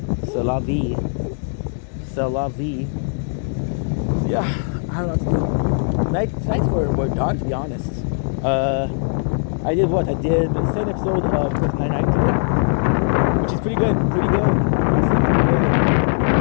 C'est la vie. C'est la vie. Yeah, I don't know what to do. Nights were done, to be honest. I I did what? I did the second episode of Brooklyn Nine-Nine today, which is pretty good. Pretty good. I say pretty good. I'm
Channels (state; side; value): silent; right; digital silence